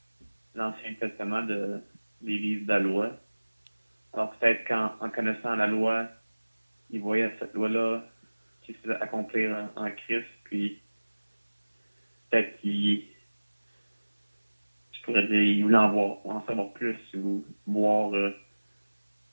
l'Ancien Testament des livres de la loi. Alors peut-être qu'en connaissant la loi, il voyait cette loi-là qui se faisait accomplir en Christ, puis peut-être je pourrais dire, il voulait en savoir plus ou voir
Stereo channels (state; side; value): inverted; both; correlation -1.00